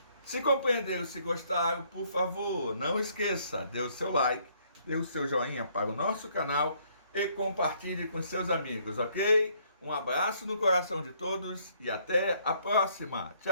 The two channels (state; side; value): inverted; both; correlation -0.66